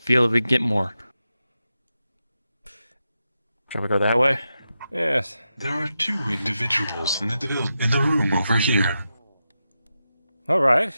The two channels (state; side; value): inverted; both; correlation -0.89